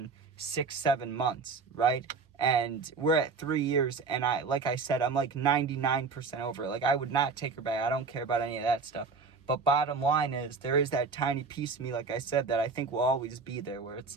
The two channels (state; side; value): quieter; left; 4.6 dB